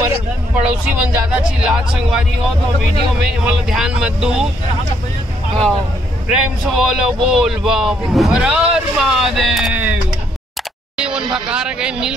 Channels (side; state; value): both; normal; correlation 0.71